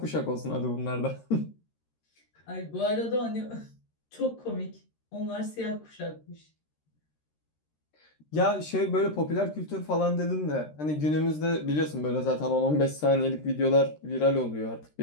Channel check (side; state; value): right; late; 13 ms